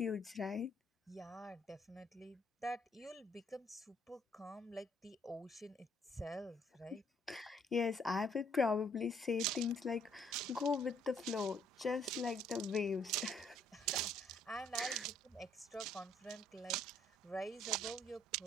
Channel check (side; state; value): both; normal; correlation 0.65